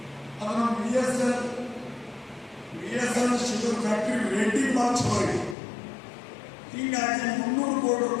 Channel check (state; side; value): drops out; right; at 5.6 s